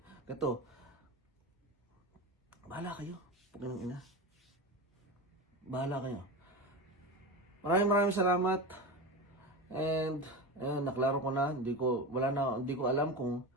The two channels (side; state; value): both; normal; correlation 0.24